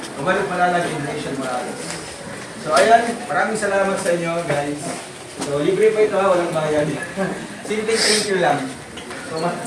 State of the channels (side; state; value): both; identical; correlation 1.00